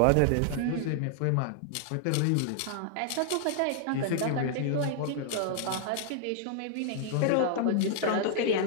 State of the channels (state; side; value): different; both; correlation -0.01